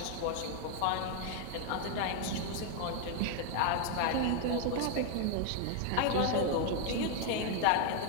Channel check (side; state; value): both; different; correlation 0.00